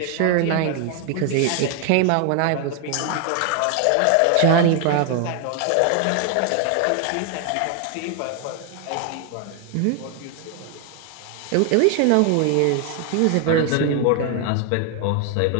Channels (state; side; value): different; both; correlation 0.00